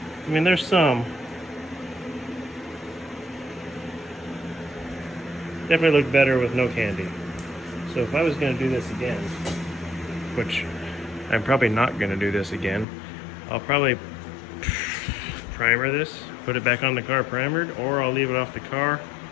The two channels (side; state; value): right; drops out; at 12.9 s